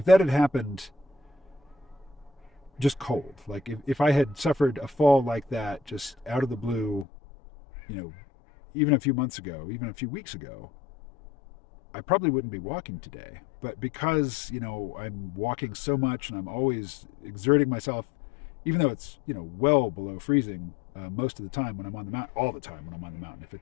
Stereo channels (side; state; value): right; drops out; at 7.1 s